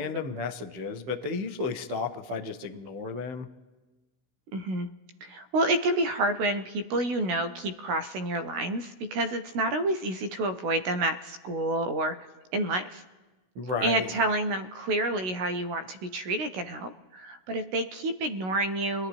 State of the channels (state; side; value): late; left; 16 ms